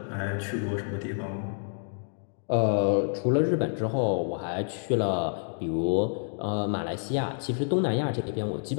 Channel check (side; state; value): right; silent; digital silence